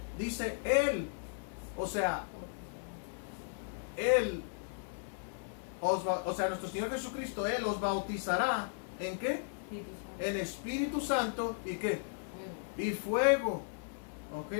Dice él, o sea, nuestro Señor Jesucristo, Él os bautizará ¿en qué? En Espíritu Santo y ¿qué? Y fuego. ¿Ok,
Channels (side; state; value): right; silent; 54 dB below the other